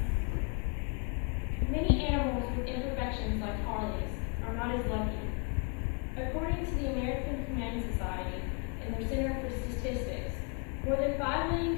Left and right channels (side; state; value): right; quieter; 36.7 dB